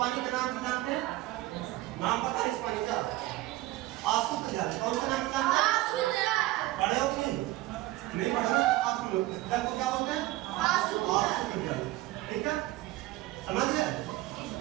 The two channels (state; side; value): quieter; left; 17.5 dB